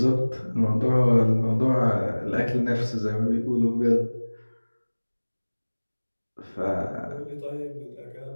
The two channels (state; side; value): inverted; both; correlation -1.00